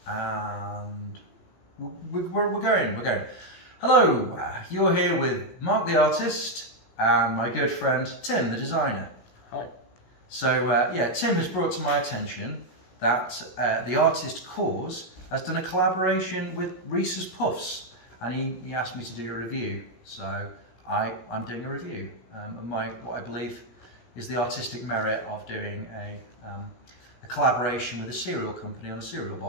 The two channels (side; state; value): right; late; 17 ms